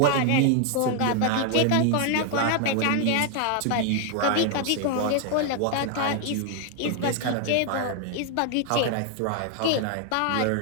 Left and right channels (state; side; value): different; both; correlation 0.00